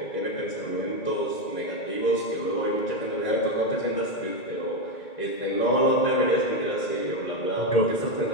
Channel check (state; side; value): late; right; 2.2 ms